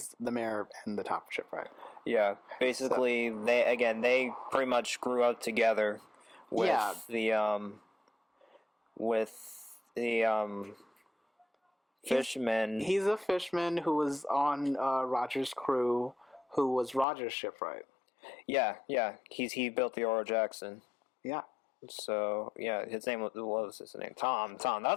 the mayor and the top shipwright. Yeah, basically they pretty much grew up together with the Fishman. He's a fishman who was on Roger's crew, who was Roger's shipwright. Yeah. He built the Oro Jackson. Yeah. So yeah, his name what was his name? Tom.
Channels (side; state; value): right; drops out; at 17.1 s